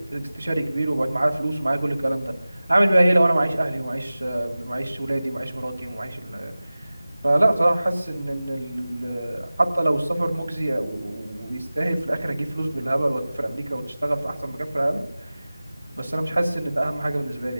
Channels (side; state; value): both; inverted; correlation -0.97